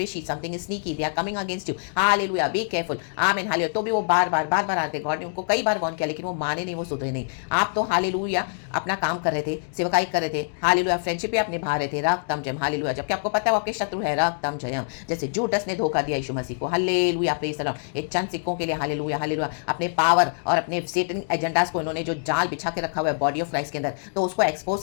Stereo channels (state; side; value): silent; right; digital silence